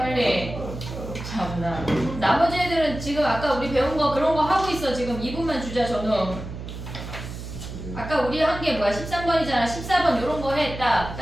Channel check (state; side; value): noise; right; hum, 9 dB below the sound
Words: 참나. 나머지 애들은 지금 아까 우리 배운 거 그런 거 하고 있어. 지금 2분만 주자 저는. 아까 우리 한 게 뭐야? 13번이잖아. 14번 요런 거 해. 딱